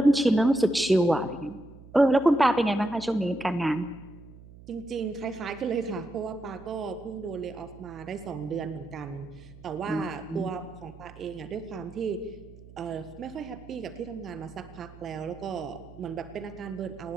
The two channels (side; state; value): right; noise; hum, 19 dB below the sound